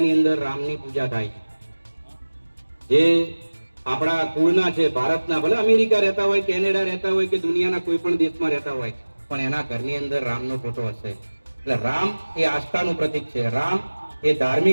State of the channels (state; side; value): inverted; both; correlation -1.00